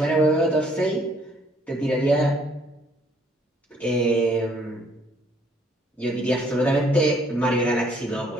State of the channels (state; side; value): normal; both; correlation 0.63